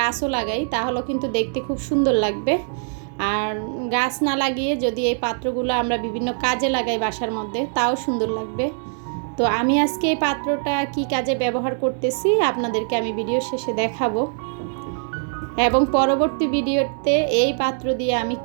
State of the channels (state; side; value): silent; left; 56 dB below the other